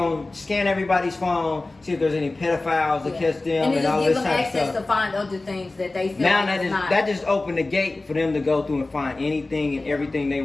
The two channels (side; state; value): right; quieter; 3.1 dB